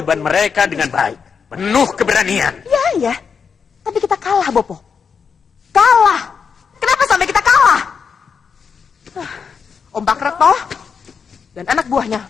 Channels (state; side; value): quieter; right; 6.2 dB